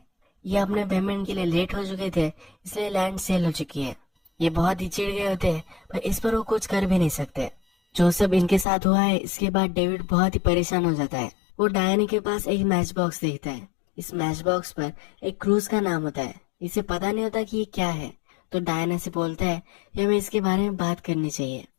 ये अपने पेमेंट के लिए लेट हो चुके थे, इसलिए लैंड सेल हो चुकी है। ये बहुत ही चिढ़ गए होते हैं, पर इस पर वो कुछ कर भी नहीं सकते। जो सब इनके साथ हुआ है इसके बाद डेविड बहुत ही परेशान हो जाता है। वो डायना के पास एक मैच बॉक्स देखता है। इस मैच बॉक्स पर एक क्रूज का नाम होता है। इसे पता नहीं होता कि ये क्या है, तो डायना से बोलता है कि हमें इसके बारे में बात करनी चाहिए।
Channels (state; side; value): drops out; right; at 8.7 s